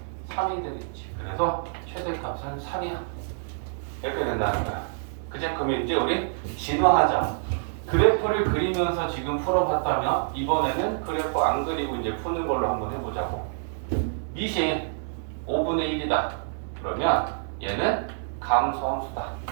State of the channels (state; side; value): silent; left; digital silence